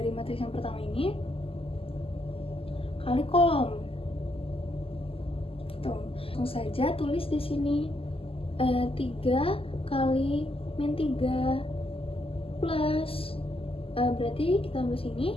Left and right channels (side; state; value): right; late; 0.27 ms